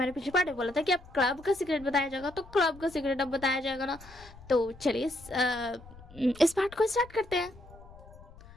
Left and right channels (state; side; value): noise; left; rumble, 20 dB below the sound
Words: पिछले पार्ट में बोला था कि अब क्लब का सीक्रेट बताया जाएगा, तो क्लब का सीक्रेट अब बताया जाएगा ना। तो चलिए इस पार्ट को स्टार्ट करते हैं।